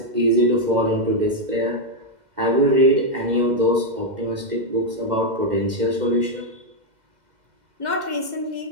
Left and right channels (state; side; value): late; left; 2.1 ms